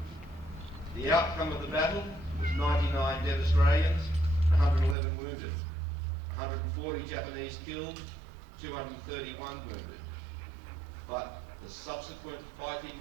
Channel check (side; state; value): left; drops out; at 5.0 s